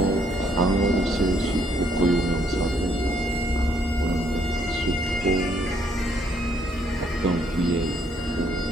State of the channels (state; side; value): normal; both; correlation 0.69